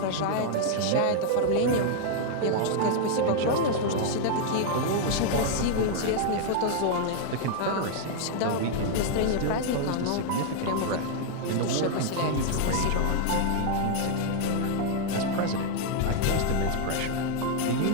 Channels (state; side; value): different; both; correlation 0.00